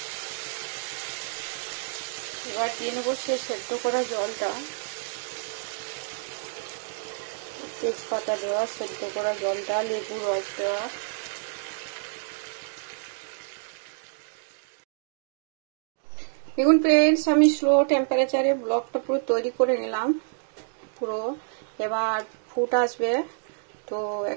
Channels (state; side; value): silent; left; digital silence